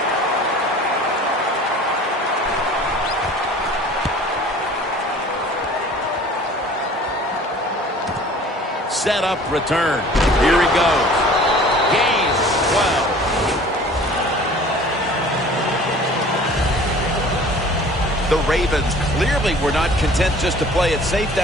Set up, return. Here he goes. Gain 12. The Ravens clearly were not content just to play it safe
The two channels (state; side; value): normal; both; correlation 0.47